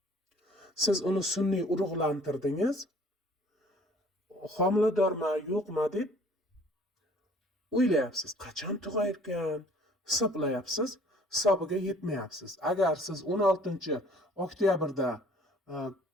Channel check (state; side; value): normal; both; correlation 0.54